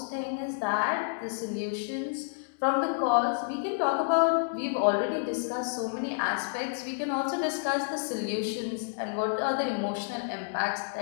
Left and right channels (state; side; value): silent; right; digital silence